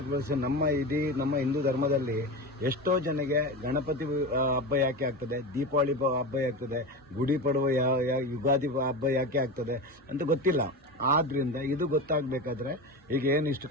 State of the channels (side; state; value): both; normal; correlation 0.24